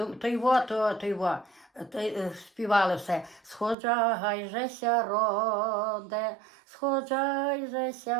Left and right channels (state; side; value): drops out; left; at 3.8 s